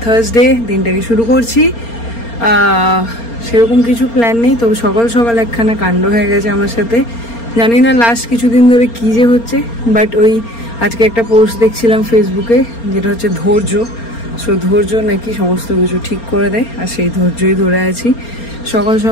থার্সডে দিনটাকে শুরু করছি। সেরকম কিছু প্ল্যান নেই, তবে সকাল সকাল একখানা কাণ্ড হয়ে গেছে আমার সাথে। জানি না লাস্ট কিছুদিন ধরে কী যে হচ্ছে, বাট ওই আজকে একটা পোস্ট দেখছিলাম ফেসবুকে, যেটা হচ্ছে ধৈর্য। সো ধৈর্য নাকি সমস্ত কিছু ঠিক করে দেয়, আর সেই ধৈর্যই ধরে আছি। সকাল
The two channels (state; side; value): late; right; 4.3 ms